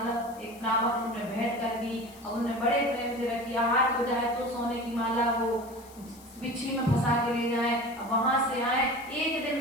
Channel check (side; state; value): left; noise; hiss, 22 dB below the sound